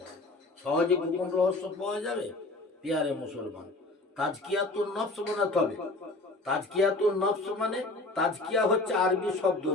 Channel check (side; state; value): right; quieter; 3.0 dB